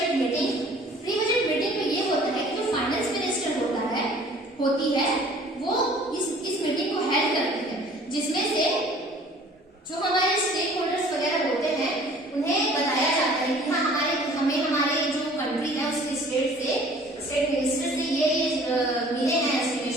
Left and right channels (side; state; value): both; normal; correlation 0.51